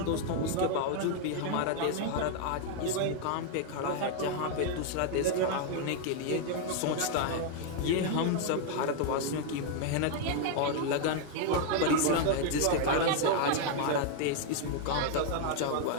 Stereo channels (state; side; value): different; both; correlation 0.00